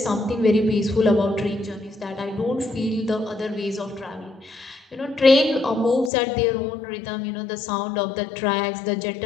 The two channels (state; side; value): drops out; right; at 6.1 s